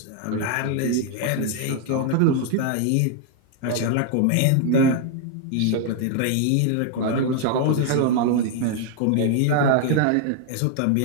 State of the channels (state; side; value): different; both; correlation 0.00